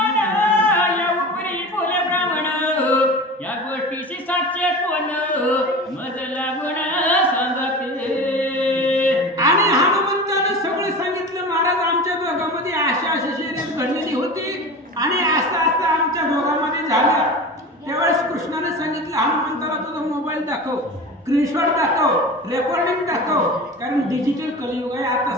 या उपरी बोले ब्राह्मण या गोष्टीची साक्ष कोण मज लागून सांगते आणि हनुमंतानं सगळं सांगितलं महाराज आमच्या दोघांमध्ये अशा शर्यत घडलेली होती आणि असं आमच्या दोघांमध्ये झालं त्यावेळेस कृष्णाने सांगितलं हनुमंताला तुझा मोबाईल दाखव स्क्रीनशॉट दाखव रेकॉर्डिंग दाखव कारण डिजिटल कलियुग आहे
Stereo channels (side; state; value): both; normal; correlation 0.32